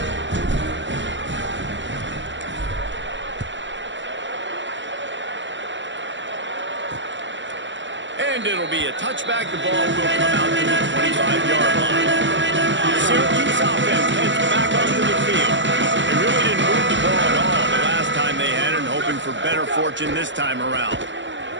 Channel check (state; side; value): late; left; 0.54 ms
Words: And it'll be a touchback. The ball will come out to the 25-yard line. Syracuse offense heads back onto the field. They really didn't move the ball at all the last time they had it, hoping for better fortune this time around.